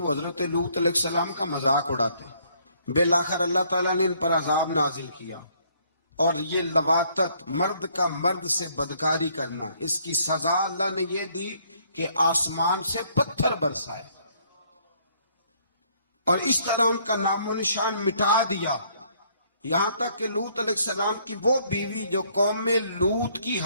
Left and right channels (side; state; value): both; inverted; correlation -0.65